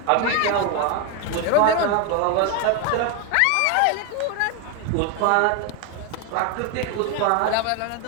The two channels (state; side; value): different; both; correlation 0.01